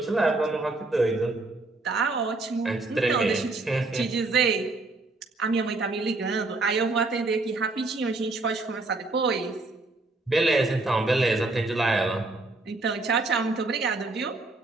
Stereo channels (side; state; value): left; quieter; 3.2 dB